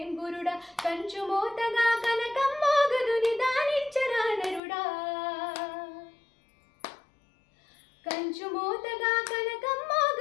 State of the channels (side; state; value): right; drops out; at 4.6 s